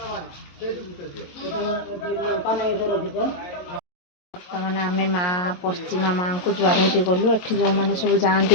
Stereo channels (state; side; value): late; right; 22 ms